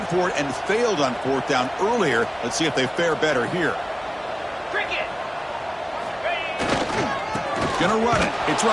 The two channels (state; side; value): identical; both; correlation 1.00